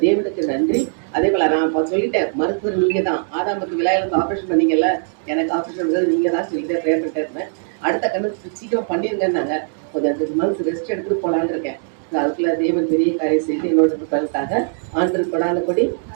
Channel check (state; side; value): silent; left; digital silence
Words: தேவனுக்கு நன்றி. அதே போல நான் இப்போ சொல்லிட்டேன், மருத்துவர் நீங்க தான். ஆதாமுக்கு விழாயிலிருந்து ஆப்ரேஷன் பண்ணீங்கல்ல, எனக்கு ஆப்ரேஷன் நீங்க தான் சொல்லிட்டே ப்ரேயர் பண்ணிட்டே இருந்தேன். அடுத்த கண்ணு சீக்கிரம் பண்ணிருங்கன்னாங்க. கொஞ்சம் 2 மந்த்ஸ் ரெஸ்ட் எடுத்துட்டு போலான்னு இருக்கேன். அதுக்குள்ள தேவன் பெரிய காரியம் செய்து என்னோட பலனுக்காக ஆண்டு கொடான கொடி